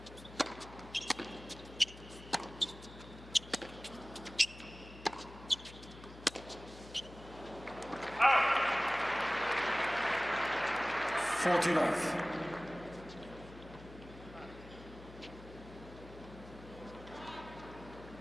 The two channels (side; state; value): left; noise; hum, 17 dB below the sound